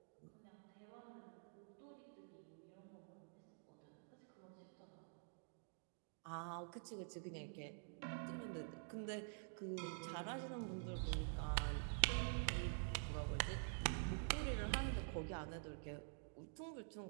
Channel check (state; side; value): silent; left; digital silence